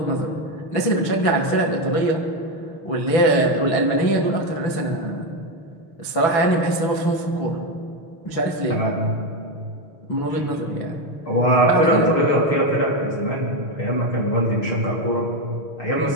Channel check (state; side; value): late; right; 6.0 ms